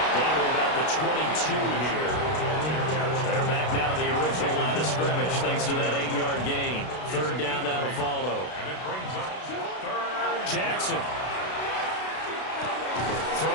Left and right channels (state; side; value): late; right; 32 ms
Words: to about the 22 here. They're back now to the original line of scrimmage thanks to that 8-yard gain. Third down now to follow. And it brings up third. Jackson. Throw